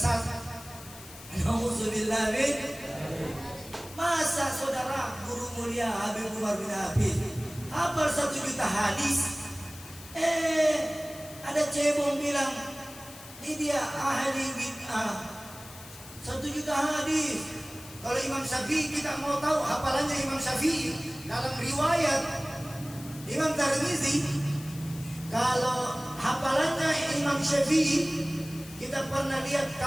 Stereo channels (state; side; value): noise; left; hiss, 17 dB below the sound